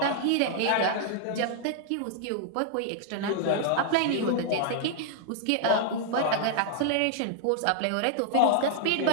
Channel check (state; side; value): different; both; correlation -0.01